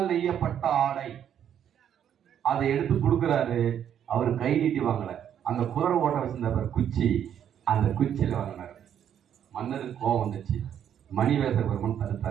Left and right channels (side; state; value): left; quieter; 9.4 dB